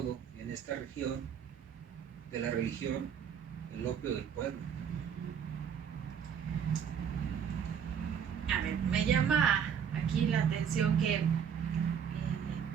en esta región de la religión, el opio del pueblo. A ver, me llama aquí la atención que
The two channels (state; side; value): quieter; left; 7.8 dB